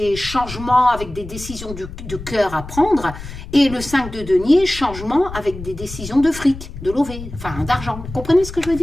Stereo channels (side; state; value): left; noise; rumble, 12 dB below the sound